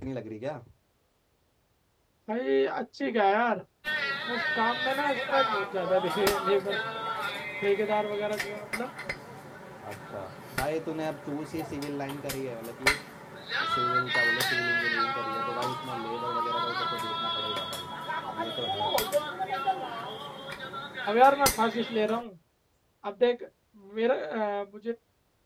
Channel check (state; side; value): identical; both; correlation 1.00